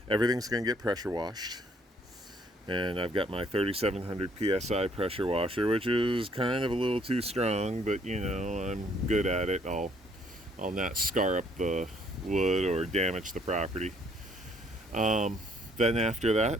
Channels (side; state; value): both; normal; correlation 0.65